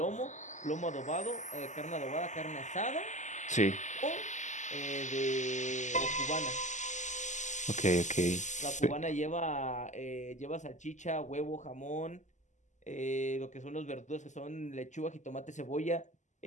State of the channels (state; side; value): late; right; 0.34 ms